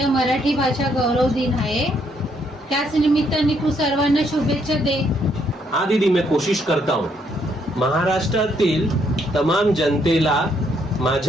मराठी भाषा गौरव दिन आहे. त्याच निमित्ताने तू सर्वांना शुभेच्छा दे. हाँ दीदी, मैं कोशिश करता हूँ. महाराष्ट्रातील तमाम जनतेला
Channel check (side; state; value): both; normal; correlation 0.71